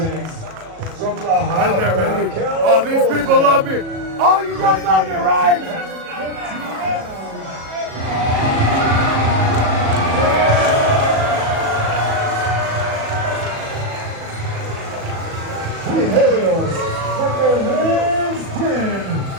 From the Right there, baby. Oh, these people love me. Oh, you guys love me, right? He hails from the Hills Den,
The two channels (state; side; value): late; left; 37 ms